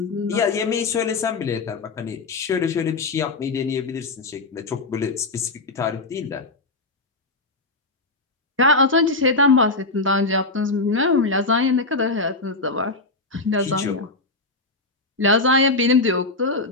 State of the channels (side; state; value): right; quieter; 3.3 dB